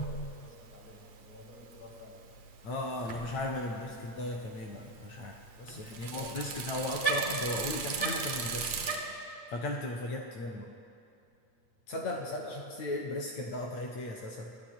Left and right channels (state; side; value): late; right; 8.7 ms